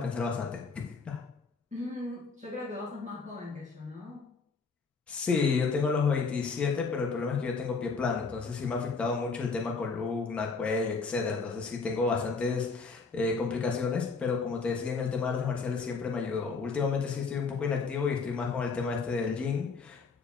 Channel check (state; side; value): quieter; right; 4.6 dB